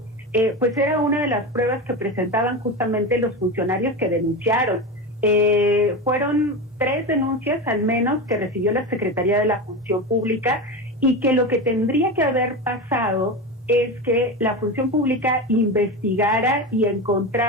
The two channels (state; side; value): normal; both; correlation 0.22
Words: pues era una de las pruebas que presentaban justamente los funcionarios que denunciaron. Fueron 3 denuncias al menos que recibió la Secretaría de la Función Pública, y que lo que tendría que haber pasado es que la Función Pública investigara y